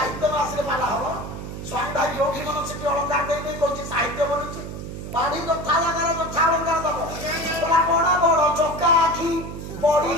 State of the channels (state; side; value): noise; right; hum, 8 dB below the sound